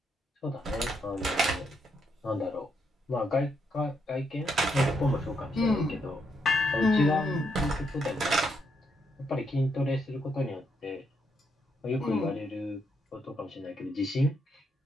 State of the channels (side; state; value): both; normal; correlation 0.77